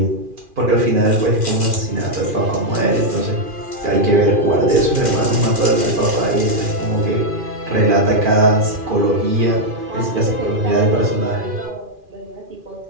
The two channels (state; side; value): late; left; 2.4 ms